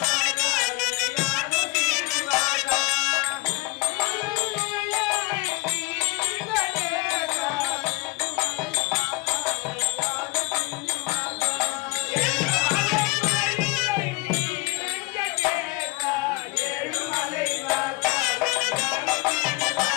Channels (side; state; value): right; quieter; 23.4 dB